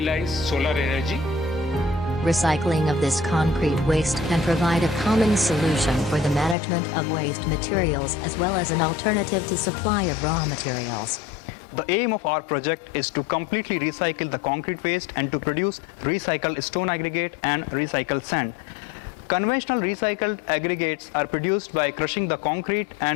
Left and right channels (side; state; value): right; drops out; at 6.6 s